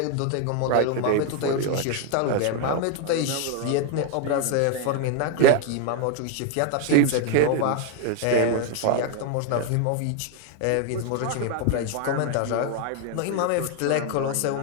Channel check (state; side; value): different; both; correlation 0.01